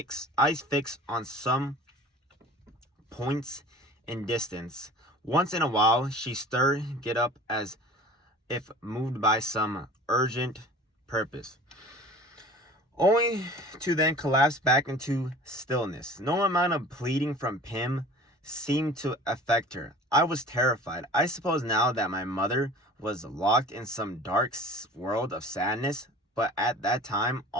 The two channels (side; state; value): both; normal; correlation 0.43